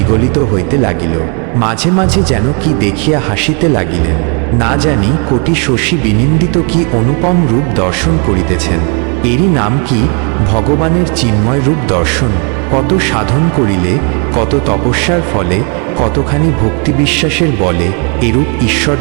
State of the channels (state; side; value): quieter; left; 36.4 dB